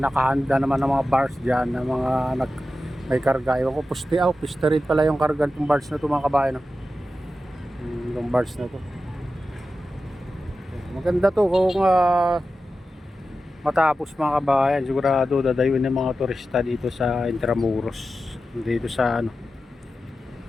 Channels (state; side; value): normal; both; correlation 0.92